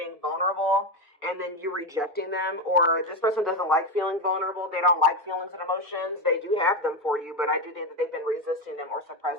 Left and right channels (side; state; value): both; normal; correlation 0.12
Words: vulnerable and then you rejecting them, or this person doesn't like feeling vulnerable. They don't like feelings and emotions. They do have them for you, but I do think that they've been resisting them or